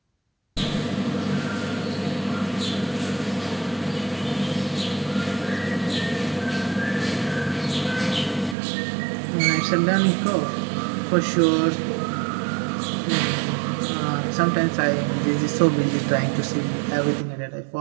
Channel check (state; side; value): drops out; left; at 8.6 s